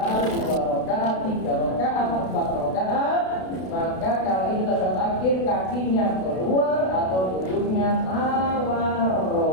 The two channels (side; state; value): right; late; 32 ms